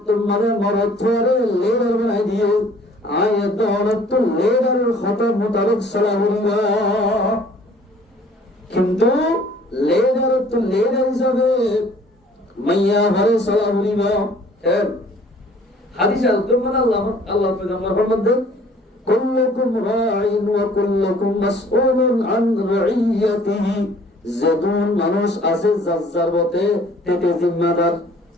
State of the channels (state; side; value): normal; both; correlation 0.55